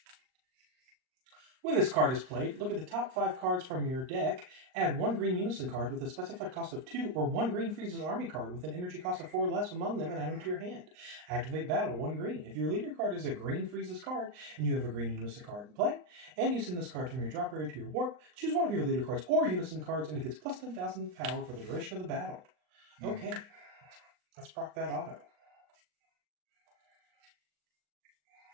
When this card is played, look at the top 5 cards from your deck, add 1 green unison card with a specified cost of 2, or 1 green Frieza's army card with an energy cost of 4 or less among them, and add them to your hand. Activate battle, 1 green. If your leader card is a green Frieza's card, and you have a green unison card in play, and you send this card from your drop area to your warp, choose one of your leader cards or unison cards, and it gets plus 10,000 power for the duration of the battle. Okay, let's proc that auto.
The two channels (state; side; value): late; left; 39 ms